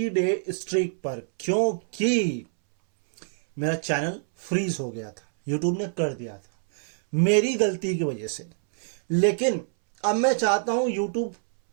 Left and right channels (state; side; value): silent; left; 61 dB below the other